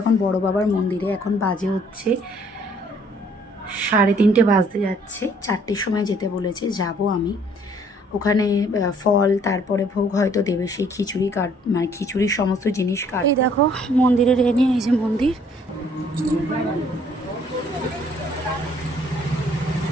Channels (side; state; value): both; normal; correlation 0.61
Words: এখন বড় বাবার মন্দিরে। এখন বাজে হচ্ছে 3:30 বাজতে যাচ্ছে। 4টের সময় যেতে বলেছে, যাব আমি ওখানে। ফল তারপরে ভোগ হয়তো দেবে, সেই খিচুড়ি মানে খিচুড়ির সমস্ত জিনিস এই দেখো মন্দিরের এনে, এই যে মন্দির।